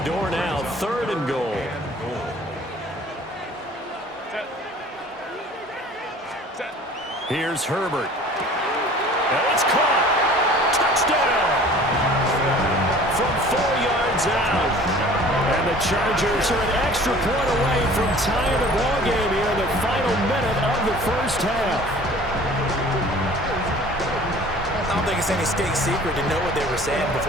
now. 3rd and goal. Here's Herbert. And it's caught. Touchdown. From 4 yards out. And the Chargers are an extra point away from tying the ballgame here in the final minute of the first half. I don't think it's any state secret to know what they were saying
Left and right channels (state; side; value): normal; both; correlation 0.47